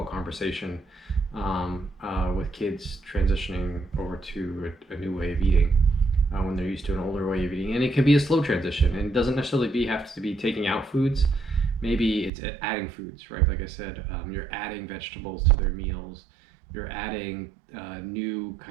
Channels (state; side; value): drops out; left; at 12.3 s